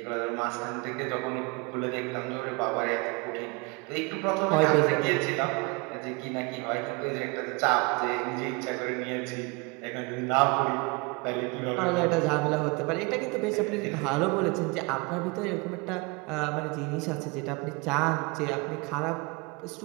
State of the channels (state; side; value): quieter; left; 28.6 dB